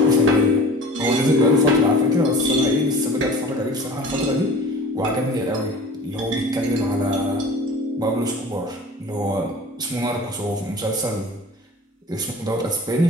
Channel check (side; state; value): both; normal; correlation 0.42